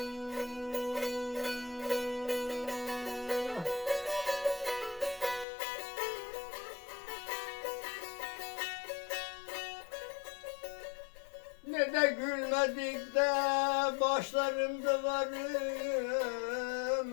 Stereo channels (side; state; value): right; drops out; at 5.5 s